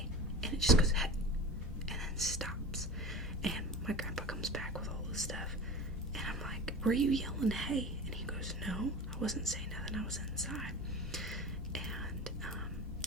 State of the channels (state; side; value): normal; both; correlation 0.33